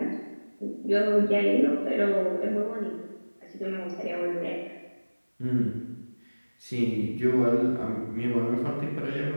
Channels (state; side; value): inverted; both; correlation -1.00